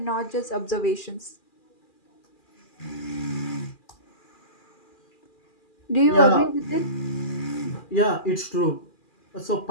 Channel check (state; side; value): late; right; 2.4 ms